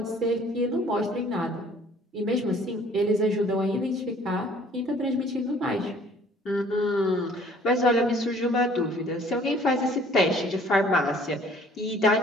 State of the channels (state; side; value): normal; both; correlation 0.55